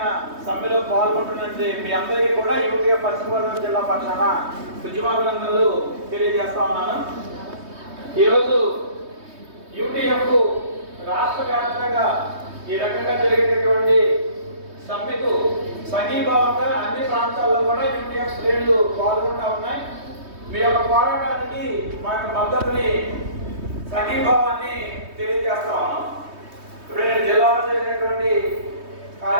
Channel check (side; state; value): left; late; 3.2 ms